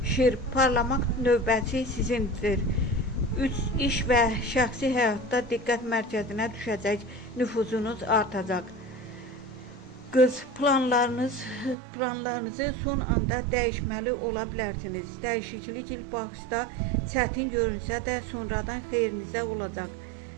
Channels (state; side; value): drops out; left; at 11.8 s